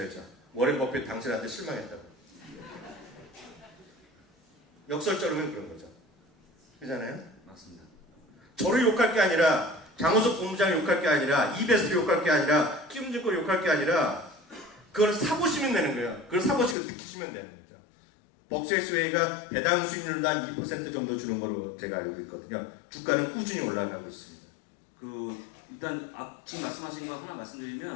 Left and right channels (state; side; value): drops out; right; at 16.8 s